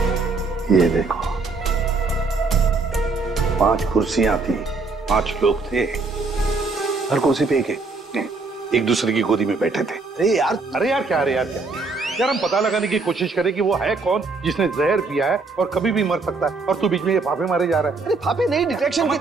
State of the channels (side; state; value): left; quieter; 3.9 dB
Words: ये देखो, 5 कुर्सियां थी, 5 लोग थे, हर कुर्सी पे एक दूसरे की गोदी में बैठे थे। अरे यार क्या यार, हम पता लगाने की कोशिश करें कि वो है कौन जिसने जहर पिया है और कभी भी मर सकता है, और तू बीच में ये फाफे मारे जा रहा है। अरे फाफे नहीं, डिटेक्शन